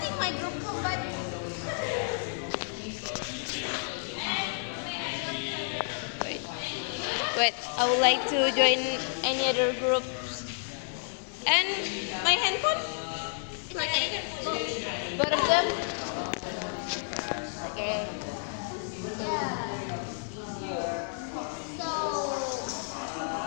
my group come back. Wait, I would like to join any other groups. And my handphone? Both of them? Okay. Yeah. So,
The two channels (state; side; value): silent; right; 57 dB below the other